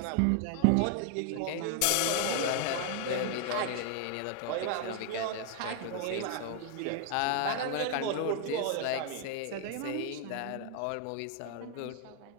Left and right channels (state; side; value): different; both; correlation 0.00